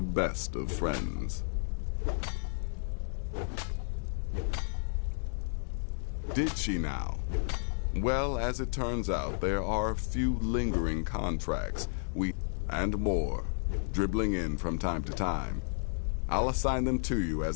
best of friends. Did she now? Well, as it turns out, there are a few lingering contracts, and more, dribbling in from time to time. I'll assign them to you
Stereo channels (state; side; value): silent; right; digital silence